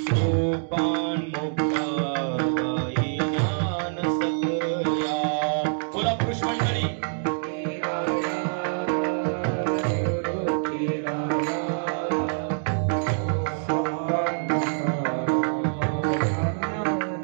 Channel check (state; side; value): silent; left; digital silence